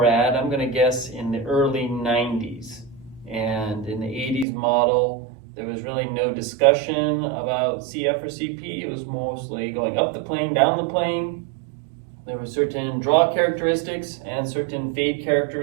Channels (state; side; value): drops out; left; at 4.5 s